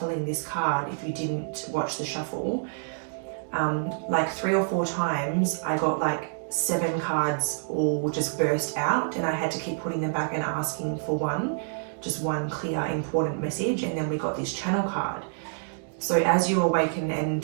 this card, if you didn't watch the shuffle, like 3 or 4 times I got like 7 cards all just burst out, and I had to keep putting them back and asking for just one clear important message, and then we got this channel card. So as you awaken and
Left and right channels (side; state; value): left; silent; digital silence